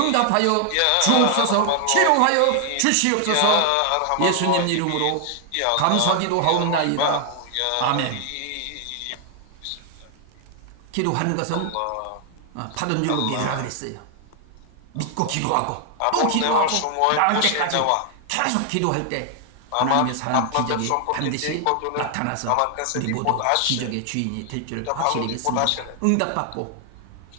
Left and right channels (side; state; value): both; different; correlation 0.00